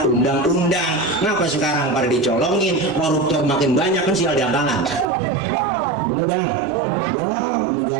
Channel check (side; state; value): left; drops out; at 5.1 s